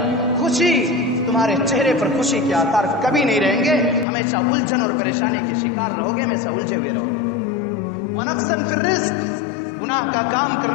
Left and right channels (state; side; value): drops out; right; at 4.0 s